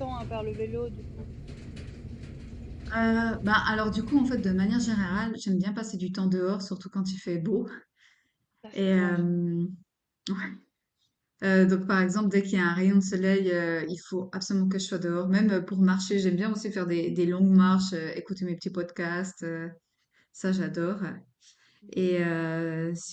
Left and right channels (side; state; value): both; identical; correlation 1.00